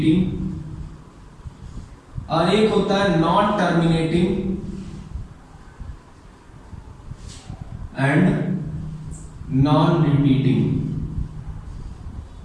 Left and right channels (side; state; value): both; identical; correlation 1.00